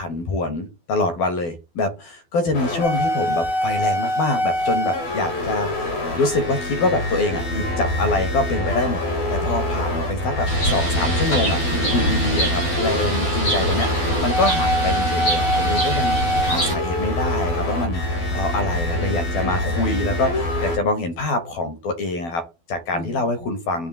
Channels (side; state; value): right; late; 12 ms